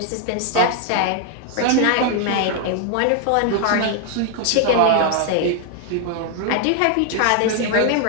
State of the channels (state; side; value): different; both; correlation 0.00